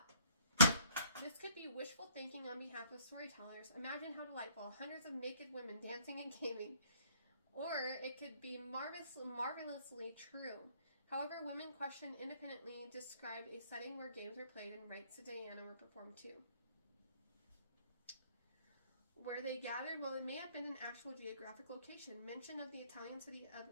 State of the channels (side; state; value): both; inverted; correlation -0.59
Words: This could be wishful thinking on behalf of storytellers. Imagine how delightful, hundreds of naked women dancing and gaming. Or it could be marvelously true. However, women questioned independently described a setting where games were played and rites to Diana were performed too. Where they gathered, well, it may have been an actual geographic location. Mention of the Italian city